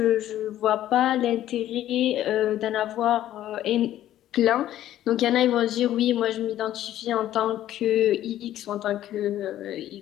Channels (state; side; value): quieter; right; 12.7 dB